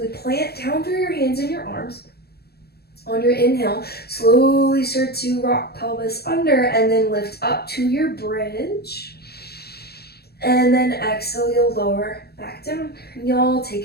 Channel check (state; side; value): late; right; 0.46 ms